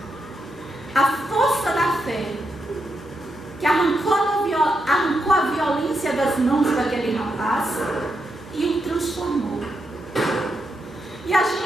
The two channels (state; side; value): normal; both; correlation 0.83